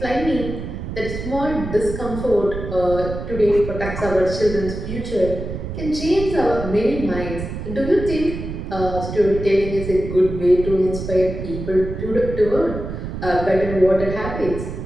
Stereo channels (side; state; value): right; noise; rumble, 7 dB below the sound